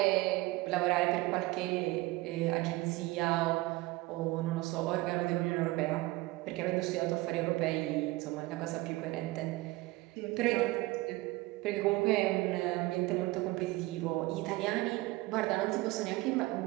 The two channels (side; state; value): left; quieter; 20.4 dB